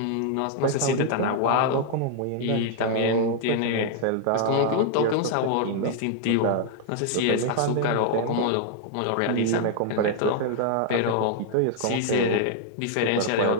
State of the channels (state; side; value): different; both; correlation 0.00